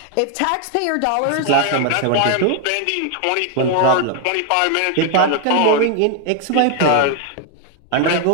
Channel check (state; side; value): different; both; correlation 0.00